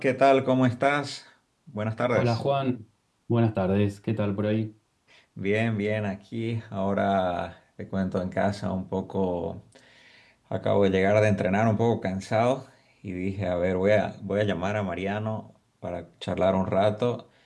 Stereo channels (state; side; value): identical; both; correlation 1.00